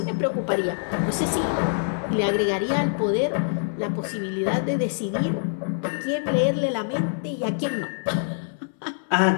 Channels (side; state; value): right; silent; 62 dB below the other